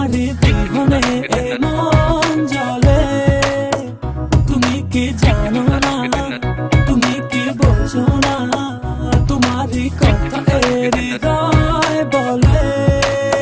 বিহনে এ মন জ্বলে। তুমি কি জানো না, তুমি কি বোঝো না, তোমার কথা হৃদয় বলে।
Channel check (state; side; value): identical; both; correlation 1.00